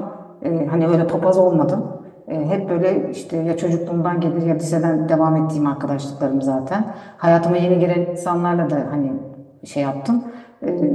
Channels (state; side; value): identical; both; correlation 1.00